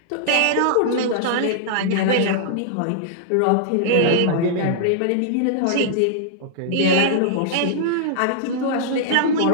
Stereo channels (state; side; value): different; both; correlation -0.01